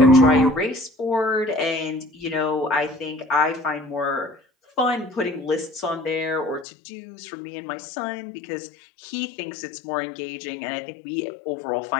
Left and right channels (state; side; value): drops out; right; at 6.7 s